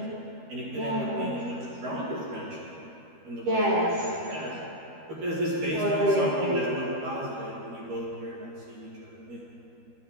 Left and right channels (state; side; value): late; left; 13 ms